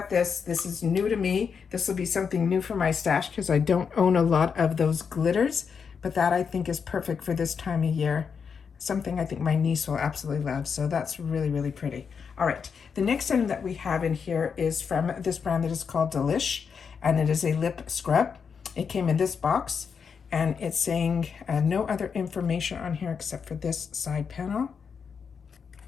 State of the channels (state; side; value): quieter; right; 6.3 dB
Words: this. This is new to me. This will be something new for my stash because I don't own a lot of those glitters, but that I think is perfect for this time of year. Something I think my niece will absolutely love. So that's really, really pretty. All right, the next item that we have in here is from this brand that is called Delish, and it is a lip scrub. It came in this box, and it's saying no other information on here except for this side panel.